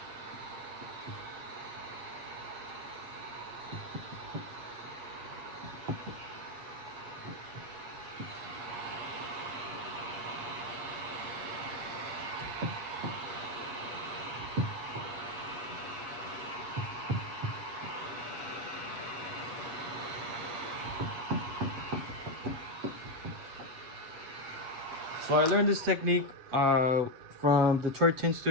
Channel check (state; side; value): late; left; 8.1 ms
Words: So I learned this technique from Detroit Tint